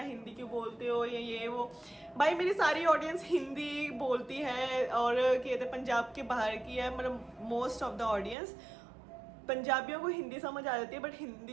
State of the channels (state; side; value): drops out; left; at 8.3 s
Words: हिंदी क्यों बोलते हो, या ये वो। भाई मेरी सारी ऑडियंस हिंदी बोलती है, और कहते पंजाब के बाहर की है, मतलब मोस्ट ऑफ द ऑडियंस। पंजाबियों को हिंदी समझ आ जाती है, बट